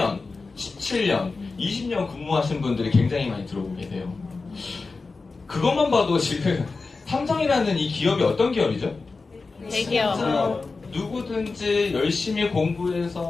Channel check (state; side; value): quieter; right; 4.0 dB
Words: 17년, 20년 근무하신 분들이 굉장히 많이 들어오고 계세요. 그것만 봐도 지금 삼성이라는 이 기업이 어떤 기업이죠? 대기업. 누구든지 열심히